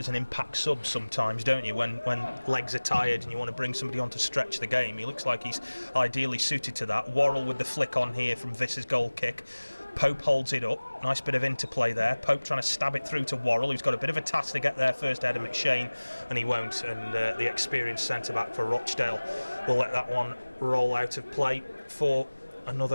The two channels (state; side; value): inverted; both; correlation -1.00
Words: an impact sub sometimes, don't you? When legs are tired and you want to bring somebody on to stretch the game. He looks like he's ideally suited to that. Worrell with the flick on here from Visser's goal kick. Pope holds it up. Nice bit of interplay there. Pope trying to stab it through to Worrell, who's got a bit of a task to get there first ahead of McShane, and he won't. And the experienced centre-back for Rochdale will let that one roll out of play for